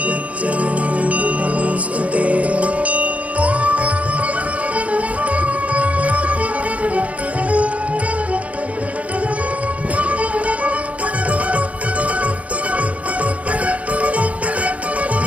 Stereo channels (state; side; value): late; left; 0.066 ms